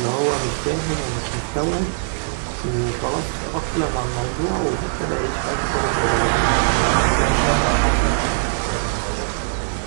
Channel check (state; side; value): silent; left; 65 dB below the other